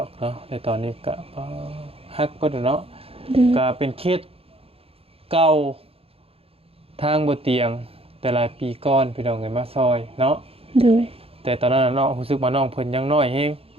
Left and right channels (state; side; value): late; left; 0.28 ms